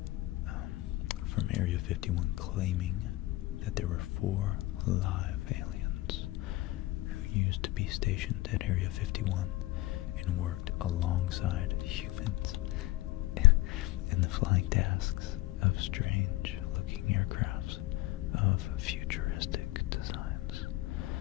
from Area 51 claiming that there were 4 live aliens who used to be stationed at Area 51 and worked alongside humans in the flying tasks of strange-looking aircrafts of futuristic designs.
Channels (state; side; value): quieter; right; 17.9 dB